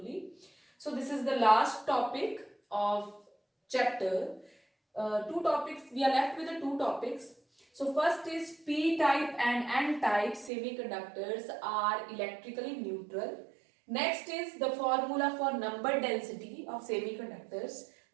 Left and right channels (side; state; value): left; drops out; at 10.5 s